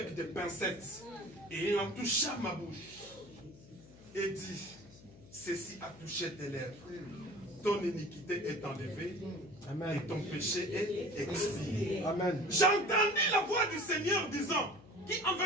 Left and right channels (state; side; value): noise; left; hum, 21 dB below the sound